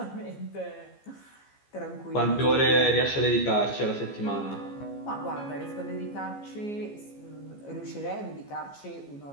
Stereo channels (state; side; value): late; right; 15 ms